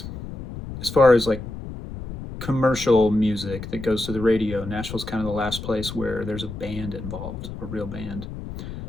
as far as like commercial music that goes to the radio, Nashville's kind of the last place where there's a band involved, a real band.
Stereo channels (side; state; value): left; noise; rumble, 10 dB below the sound